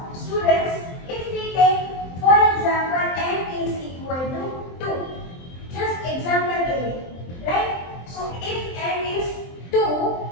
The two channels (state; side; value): late; right; 23 ms